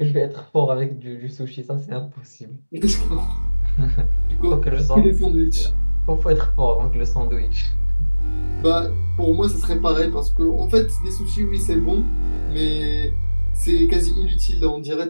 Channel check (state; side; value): inverted; both; correlation -1.00